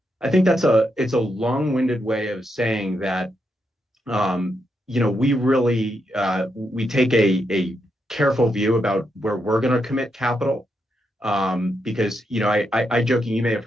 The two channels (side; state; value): both; normal; correlation 0.82